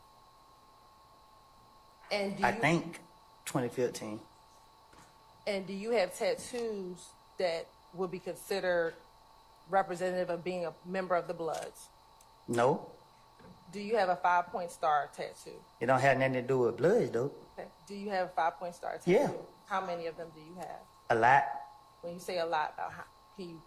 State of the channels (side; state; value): both; identical; correlation 1.00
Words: And do I you, think 2015. And do you have tattoos that would be considered representative of being a member of the Bloods? No, Do you have a 5-point star tattoo? it don't have nothing to do with bloods, though. Okay. Do you have a 5-point star tattoo? Yeah. How many of them do you have? A lot, When you say a lot, can you